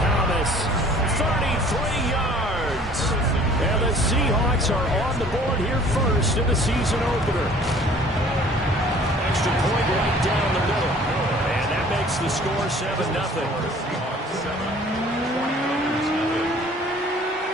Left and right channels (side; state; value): both; normal; correlation 0.52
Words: 33 yards. And the Seahawks are on the board here first in the season opener. Extra point right down the middle. And that makes the score 7-0.